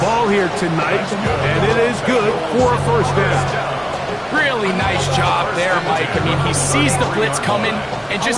here tonight, and it is good for a first down. Really nice job there, Mike. I mean, he sees the blitz coming and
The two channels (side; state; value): both; identical; correlation 1.00